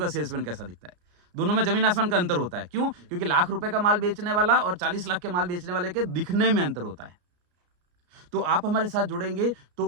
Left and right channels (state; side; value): late; left; 34 ms